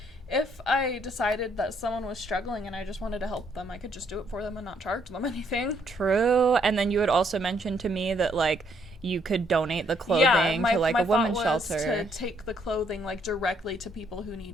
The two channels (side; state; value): both; normal; correlation 0.70